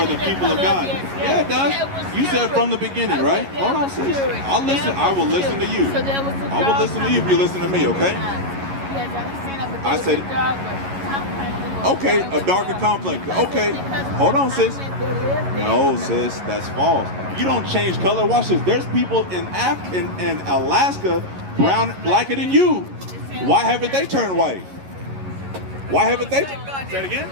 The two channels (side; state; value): left; late; 11 ms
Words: people of God? Yeah, it does. You said from the beginning, right? Hold on, sis. I'll listen. I will listen to you. I will listen to you if you listen to me, okay? I said, okay, a darker complex. Okay, hold on, sis. No, sis, that's false. You don't change color. Watch this. There's people in Alaska blacker than you. Why haven't they turned white? Why haven't they? Say it again.